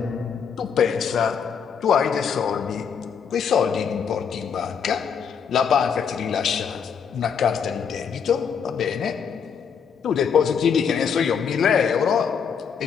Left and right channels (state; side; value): quieter; right; 6.9 dB